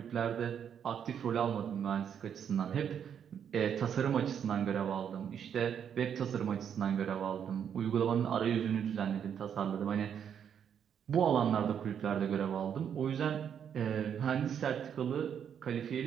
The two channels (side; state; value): left; quieter; 8.3 dB